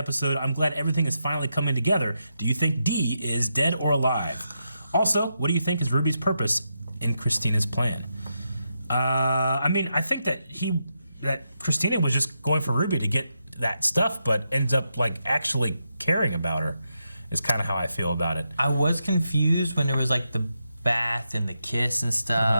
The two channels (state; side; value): inverted; both; correlation -0.85